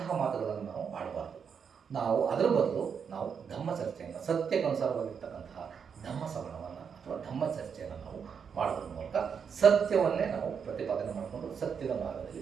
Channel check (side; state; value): left; quieter; 6.8 dB